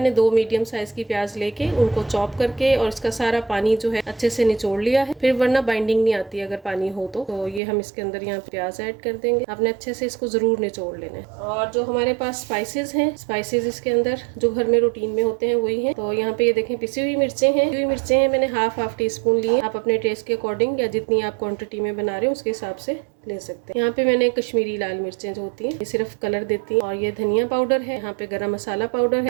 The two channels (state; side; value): drops out; left; at 7.6 s